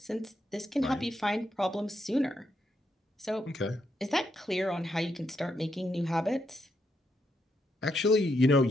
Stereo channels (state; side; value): normal; both; correlation 0.80